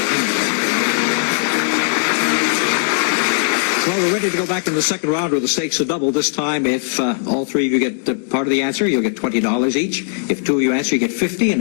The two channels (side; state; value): right; silent; digital silence